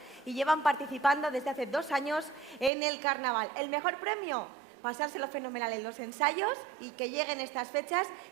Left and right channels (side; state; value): left; drops out; at 2.7 s